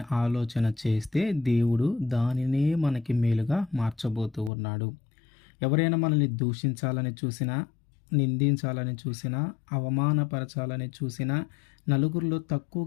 ఆలోచన చేస్తే దేవుడు దానినే మనకి మేలుగా మార్చబోతూ ఉన్నాడు. ఎవరైనా మనల్ని దూషించాలని చూసినా, నిందించాలని చూసినా, అవమానపరచాలని చూసినా, నలుగురిలో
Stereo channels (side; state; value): right; drops out; at 4.5 s